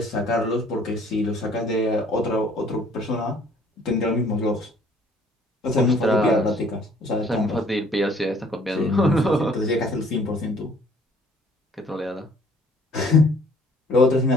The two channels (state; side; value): normal; both; correlation 0.58